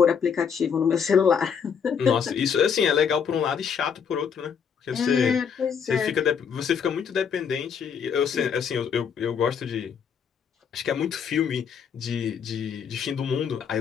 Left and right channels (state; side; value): quieter; right; 7.0 dB